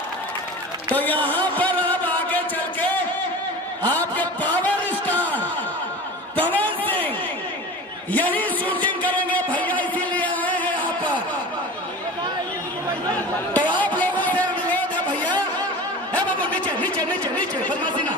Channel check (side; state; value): both; normal; correlation 0.34